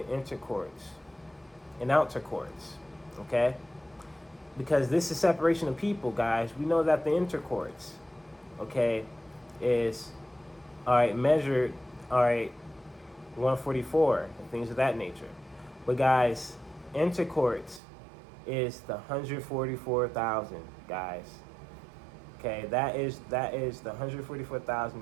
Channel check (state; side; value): drops out; left; at 17.8 s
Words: intercourts and outer courts, okay? Because this is separation of people, guys. We know that the intercourts, okay, is, all right, measured, all right, 144 and things of that nature. But guys, intercourts is the 144,000, guys. Okay, that is the